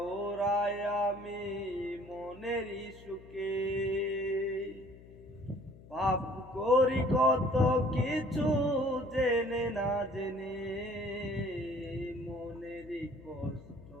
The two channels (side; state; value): left; noise; hum, 20 dB below the sound